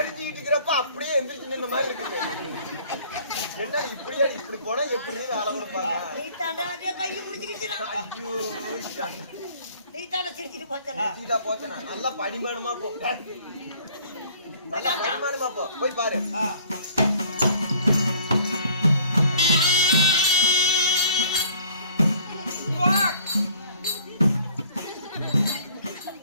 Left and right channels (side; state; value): both; inverted; correlation -0.55